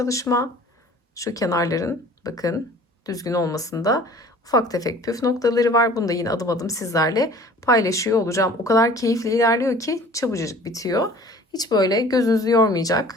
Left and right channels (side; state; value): both; normal; correlation 0.48